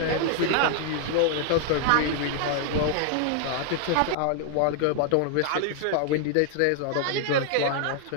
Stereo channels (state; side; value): different; both; correlation 0.00